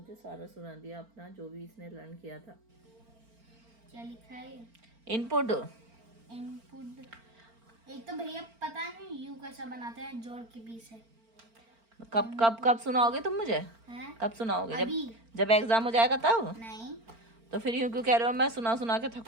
सारा सुना दिया अपना जो भी इसने लर्न किया था। क्या लिखा है? इनपुट। एक तो भैया पता नहीं यू कैसा बनाते हैं, जोड़ के 20 है। कब सुनाओगे तुम मुझे? हैं? कब सुनाओगे? अभी। जब एग्जाम हो जाएगा तब? नहीं तो फिर यूं क्यों कह रहे हो? मैं सुना के थक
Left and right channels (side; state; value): left; late; 4.4 ms